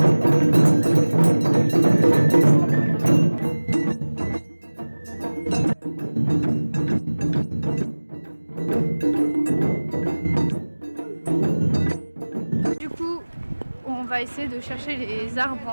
Du coup, on va essayer de chercher les arbres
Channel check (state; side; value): inverted; both; correlation -1.00